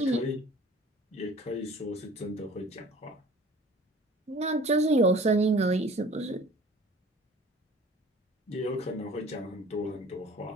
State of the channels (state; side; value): normal; both; correlation 0.47